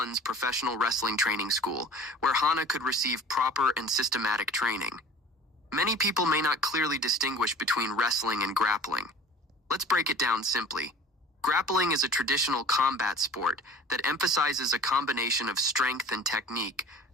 professional wrestling training school, where Hana could receive proper and systematic training. Many people may not clearly distinguish between wrestling and grappling. Let's break it down simply. Grappling is a traditional combat sport that emphasizes a combination of strength and technique,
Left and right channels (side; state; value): both; normal; correlation 0.43